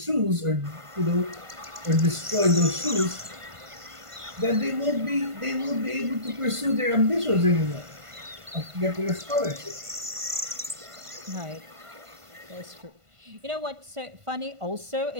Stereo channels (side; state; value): left; late; 1.5 ms